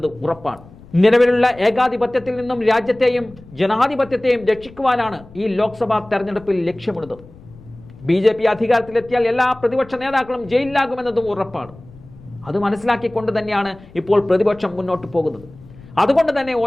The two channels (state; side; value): noise; left; rumble, 22 dB below the sound